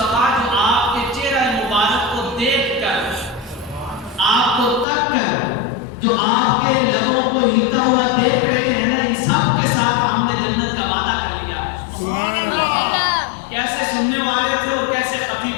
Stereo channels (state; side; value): drops out; right; at 4.9 s